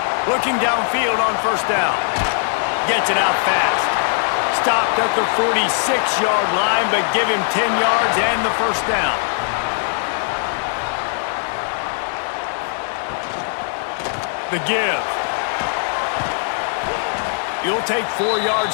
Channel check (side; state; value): right; silent; digital silence